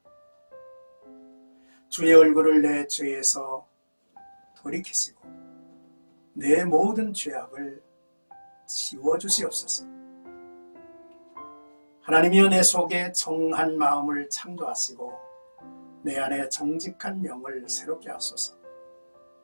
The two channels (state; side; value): inverted; both; correlation -1.00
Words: 주의 얼굴을 내 죄에서 돌이키시고 내 모든 죄악을 지워주시옵소서. 하나님이여, 내 속에 정한 마음을 창조하시고 내 안에 정직한 영을 새롭게 하소서.